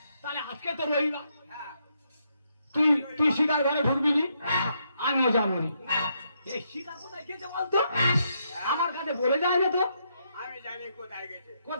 তাহলে আজকে তো রবিবার, হ্যাঁ, তুই শিকার ঘরে ঢুকবি নি, আমিও যাবো নি। এই শিকার কোথায় গেছে বলতো? আমার কাছে বলে যায় না তো। আমি জানি কোথায় গেছে।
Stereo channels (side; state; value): both; inverted; correlation -0.77